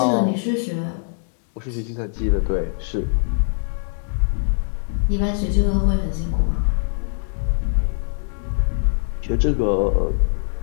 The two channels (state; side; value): silent; right; digital silence